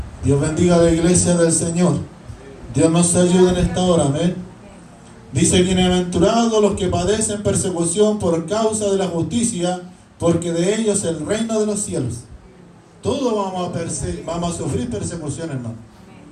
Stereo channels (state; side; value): identical; both; correlation 1.00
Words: Dios bendiga a la iglesia del Señor. Dios nos ayude en esta hora, amén. Dice, bienaventurados los que padecen persecución por causa de la justicia, porque de ellos es el reino de los cielos. Todos vamos a sufrir persecución, hermano.